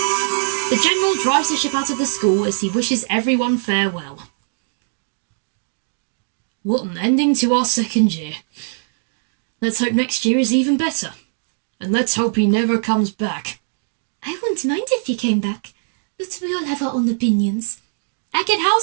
The General drives the ship out of the school as he wishes everyone farewell. What an ending to our second year. Let's hope next year is even better. And let's hope he never comes back. I wouldn't mind if he came back, but we all have our own opinions. Eckett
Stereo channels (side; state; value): left; silent; digital silence